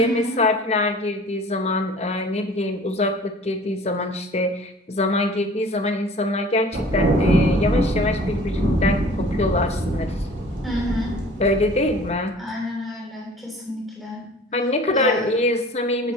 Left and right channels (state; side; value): normal; both; correlation 0.47